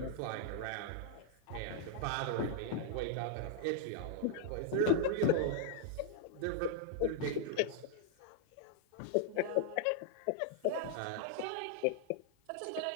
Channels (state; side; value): different; both; correlation -0.01